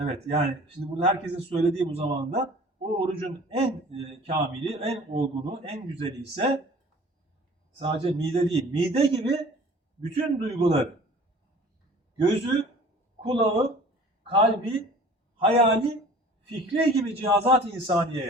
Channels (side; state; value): both; normal; correlation 0.47